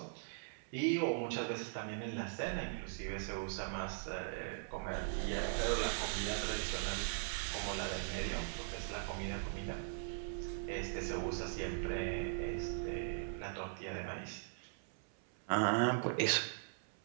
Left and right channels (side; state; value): left; silent; 51 dB below the other